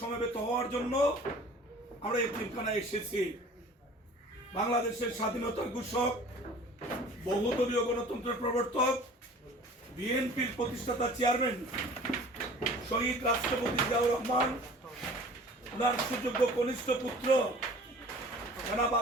হওয়ার জন্য আমরা এতিমখানায় এসেছি। বাংলাদেশের স্বাধীনতার ঘোষক, বহুদলীয় গণতন্ত্রের প্রবর্তক, বিএনপির প্রতিষ্ঠাতা চেয়ারম্যান শহীদ রাষ্ট্রপতি জিয়াউর রহমান, ওনার সুযোগ্য কনিষ্ঠ পুত্র জনাব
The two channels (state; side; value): normal; both; correlation 0.46